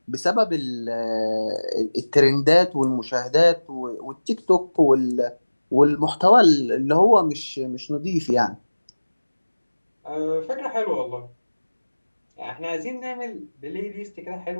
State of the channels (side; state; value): both; inverted; correlation -1.00